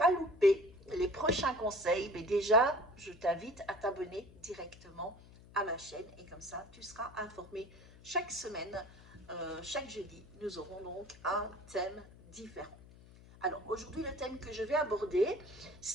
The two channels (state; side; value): noise; left; hum, 21 dB below the sound